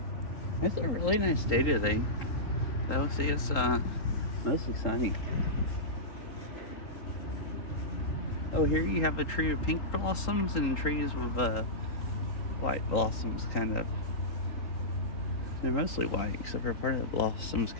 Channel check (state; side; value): late; right; 3.8 ms